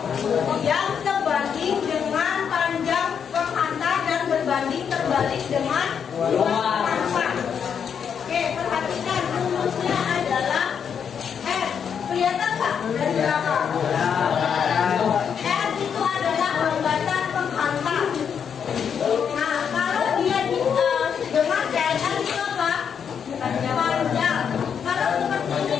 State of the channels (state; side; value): quieter; right; 7.4 dB